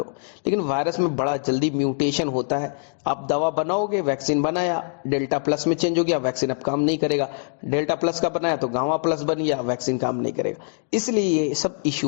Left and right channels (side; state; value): right; silent; digital silence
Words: लेकिन वायरस में बड़ा जल्दी म्यूटेशन होता है। आप दवा बनाओगे, वैक्सीन बनाया, डेल्टा प्लस में चेंज हो गया, वैक्सीन अब काम नहीं करेगा। डेल्टा प्लस का बनाया तो गामा प्लस बन गया, वैक्सीन काम नहीं करेगा। इसलिए ये सब